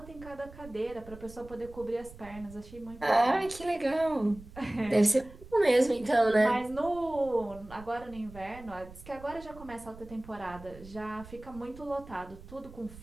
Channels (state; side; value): noise; right; rumble, 18 dB below the sound